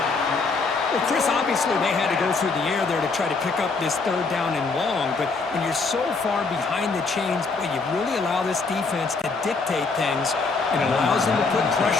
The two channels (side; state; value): right; quieter; 4.2 dB